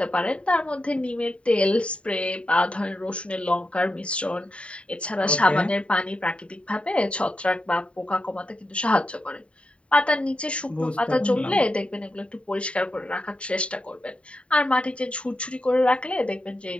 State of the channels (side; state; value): right; late; 0.061 ms